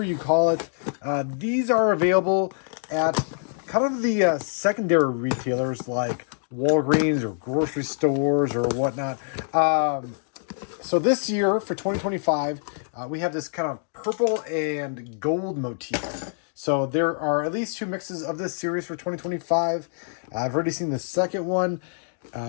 you call it. These are available at kind of the secondary retailers like Walgreens or grocery stores or whatnot. So this year for 2025, we have this kind of purple and gold motif. So there are at least two mixes of this series for 2025. I've already seen the second one,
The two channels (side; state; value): right; silent; digital silence